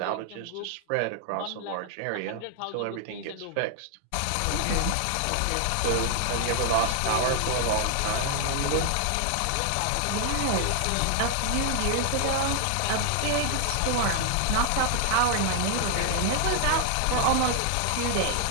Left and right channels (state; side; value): different; both; correlation 0.00